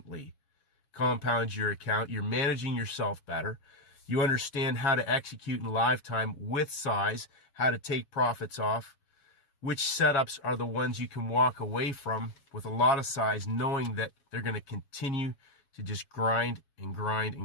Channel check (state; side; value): late; right; 7.2 ms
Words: compound your account. You're managing yourself better. You understand how to execute in live time with size, how to take profits off, which setups are the ones you can walk away from with a lot of size, knowing that they're going to continue to just grind and grind